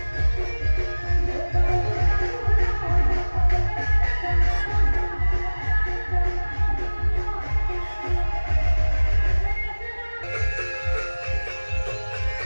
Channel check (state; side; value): inverted; both; correlation -1.00